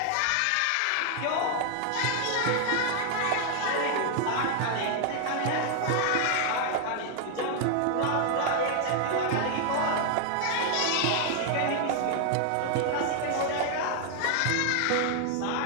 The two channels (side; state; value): both; different; correlation 0.00